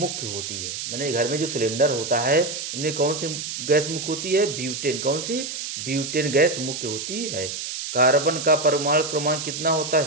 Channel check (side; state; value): right; noise; hiss, 6 dB below the sound